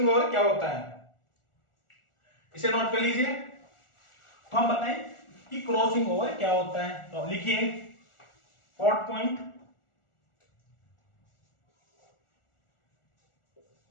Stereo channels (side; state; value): right; late; 1.4 ms